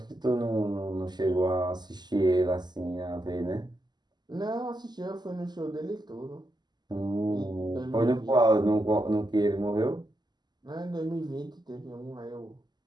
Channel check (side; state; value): left; late; 0.21 ms